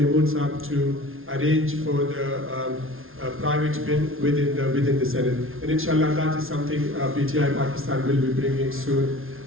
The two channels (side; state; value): left; late; 0.60 ms